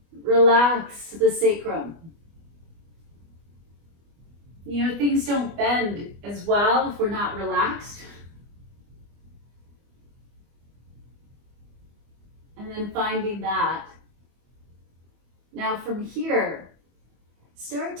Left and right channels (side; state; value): left; late; 25 ms